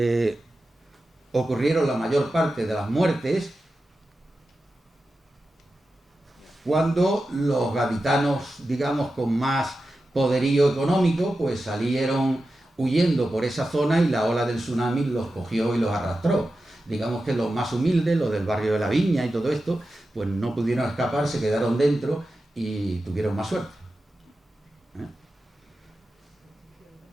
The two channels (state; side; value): normal; both; correlation 0.92